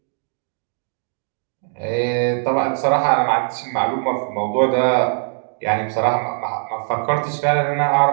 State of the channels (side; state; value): left; silent; digital silence